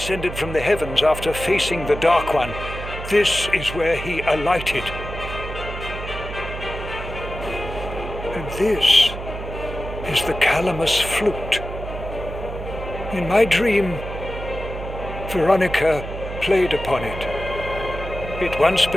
from the heavens after facing the Dark One, this is where he alighted. And this is the Calamus flute. In my dream, Veronica played upon it. It once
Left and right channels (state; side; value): noise; right; hum, 9 dB below the sound